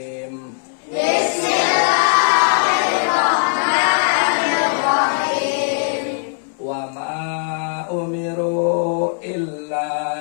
Bismillahirrahmanirrahim. Wa ma umiru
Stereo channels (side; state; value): right; silent; 65 dB below the other